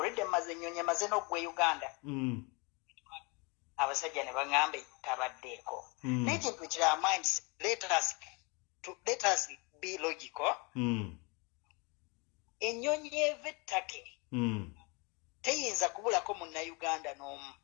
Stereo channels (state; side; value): quieter; right; 30.4 dB